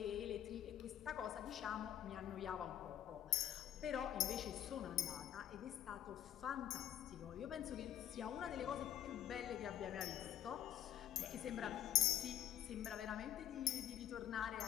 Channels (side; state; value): right; quieter; 11.1 dB